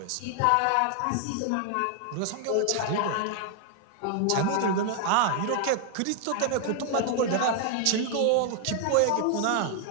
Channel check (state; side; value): different; both; correlation 0.00